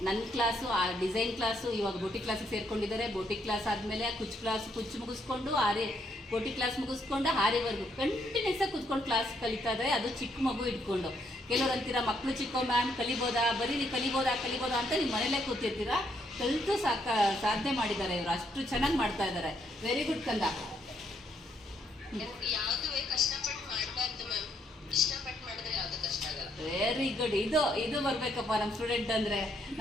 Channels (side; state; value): both; normal; correlation 0.73